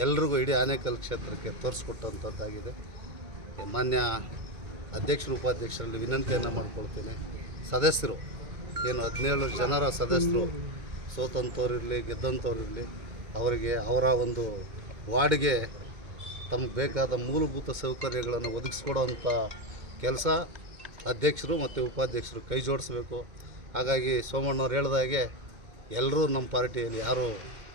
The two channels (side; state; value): left; late; 2.2 ms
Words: ಎಲ್ರಿಗೂ ಇಡೀ ಆನೇಕಲ್ ಕ್ಷೇತ್ರಕ್ಕೆ ತೋರಿಸ್ಕೊಟ್ಟಂಥದ್ದಾಗಿದೆ. ಮಾನ್ಯ ಅಧ್ಯಕ್ಷರು ಉಪಾಧ್ಯಕ್ಷರಲ್ಲಿ ವಿನಂತಿಯನ್ನು ಮಾಡ್ಕೊಳ್ತೀನಿ. ಸದಸ್ಯರು ಏನು 17 ಜನರ ಸದಸ್ಯರು ಸೋತಂಥವ್ರಿರಲಿ ಗೆದ್ದಂಥವ್ರಿರಲಿ, ಅವರಿಗೆ ಅವರ ಒಂದು ವಾರ್ಡ್ಗೆ ತಮಗೆ ಬೇಕಾದ ಮೂಲಭೂತ ಸೌಕರ್ಯಗಳನ್ನು ಒದಗಿಸ್ಕೊಡೋವಂಥ ಕೆಲಸ ಅಧ್ಯಕ್ಷರು ಮತ್ತು ಉಪಾಧ್ಯಕ್ಷರು ಕೈ ಜೋಡಿಸ್ಬೇಕು. ಹಾಗಾಗಿ ಸೋಮಣ್ಣವ್ರು ಹೇಳಿದಾಗೆ ಎಲ್ಲರೂ ನಮ್ಮ ಪಾರ್ಟಿಯಲ್ಲಿ ಯಾರೂ